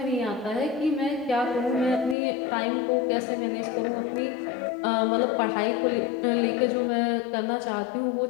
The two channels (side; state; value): right; drops out; at 2.1 s